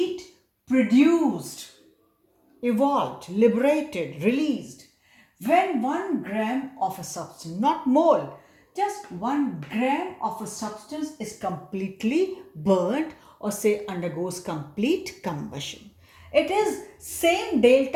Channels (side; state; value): both; identical; correlation 1.00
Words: produced, evolved, liberated, released when 1 gram of a substance, not mole, just 1 gram of a substance is completely burnt or say undergoes complete combustion. It is same